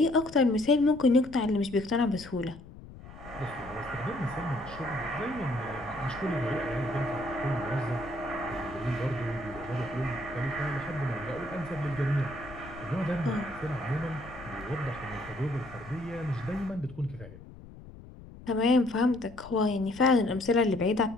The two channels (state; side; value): noise; left; rumble, 17 dB below the sound